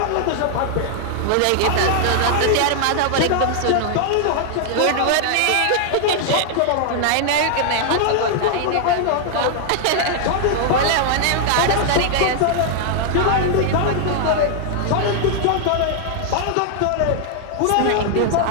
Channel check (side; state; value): both; different; correlation 0.00